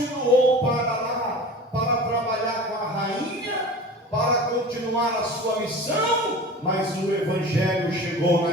para lá, para trabalhar com a rainha, para continuar a sua missão. Mas o Evangelho chegou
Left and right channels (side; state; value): both; normal; correlation 0.37